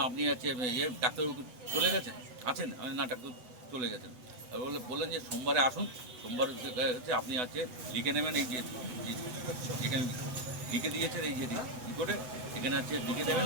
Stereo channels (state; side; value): late; left; 8.0 ms